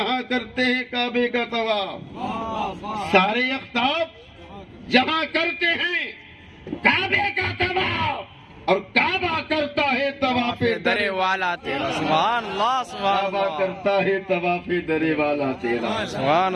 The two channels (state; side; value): identical; both; correlation 1.00